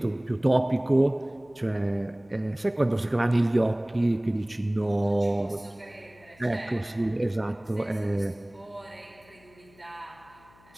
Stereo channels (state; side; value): noise; left; hum, 28 dB below the sound